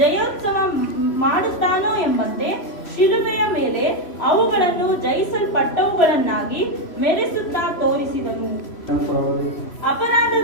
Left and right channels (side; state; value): right; late; 3.0 ms